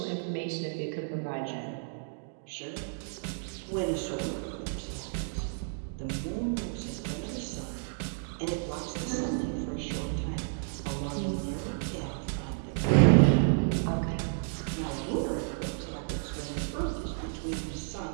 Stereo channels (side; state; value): left; silent; digital silence